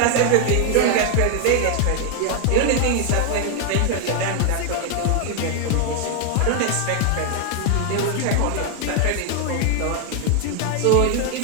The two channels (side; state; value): both; different; correlation 0.00